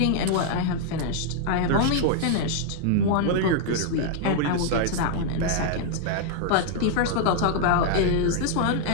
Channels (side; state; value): both; different; correlation -0.01